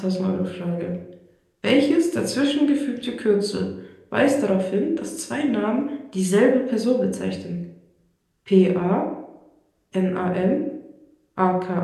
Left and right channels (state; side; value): identical; both; correlation 1.00